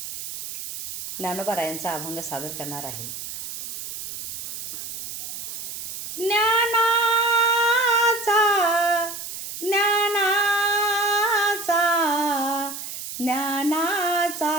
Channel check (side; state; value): right; noise; hiss, 8 dB below the sound